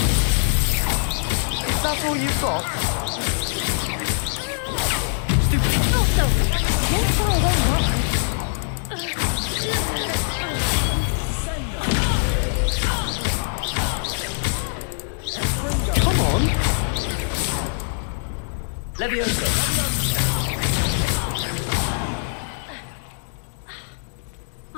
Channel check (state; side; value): silent; right; digital silence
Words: That's all you've got? Levioso!